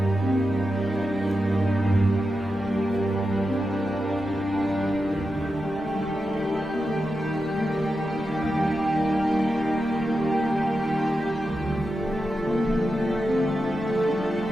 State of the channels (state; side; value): noise; left; rumble, 17 dB below the sound